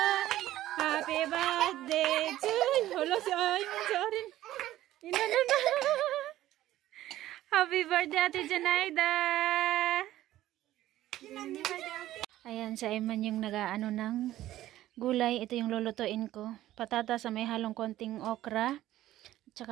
Happy birthday to you! Hala, si Arin. Inano. Happy birthday, Ate Janaida! Ayan, si Ayman yung nag-aano ng gulay. Ito yung lulutuin ko. Patatas sa may halong konting okra.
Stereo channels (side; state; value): left; quieter; 14.3 dB